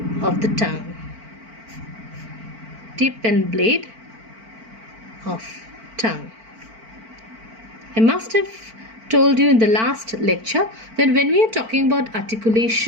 of the tongue. Tip and blade of tongue. I must have told you in the last lecture that when we are talking about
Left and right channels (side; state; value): left; late; 4.5 ms